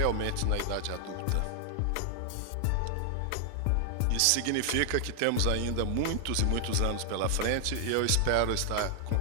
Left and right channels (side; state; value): both; different; correlation 0.00